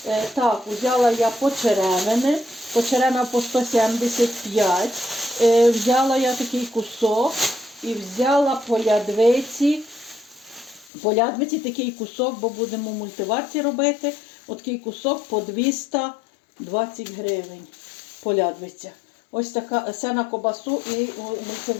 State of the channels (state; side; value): drops out; right; at 10.9 s